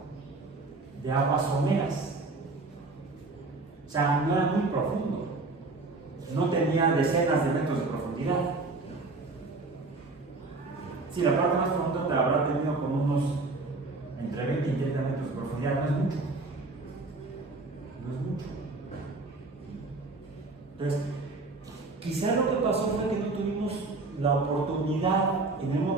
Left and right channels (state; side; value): quieter; left; 3.4 dB